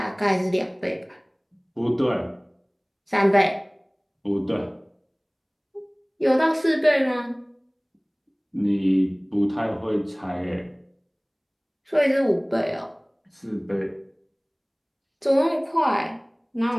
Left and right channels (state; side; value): identical; both; correlation 1.00